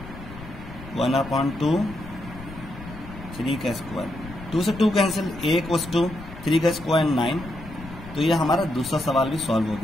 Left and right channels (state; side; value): noise; left; rumble, 14 dB below the sound